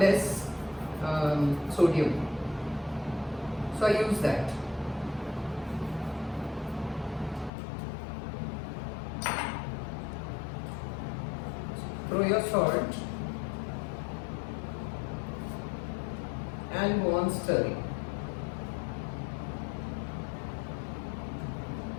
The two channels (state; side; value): drops out; right; at 7.5 s